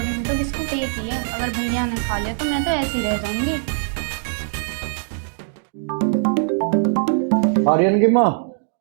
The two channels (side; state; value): left; silent; digital silence